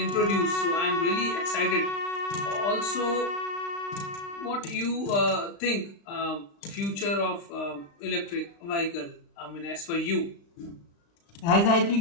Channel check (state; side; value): late; right; 35 ms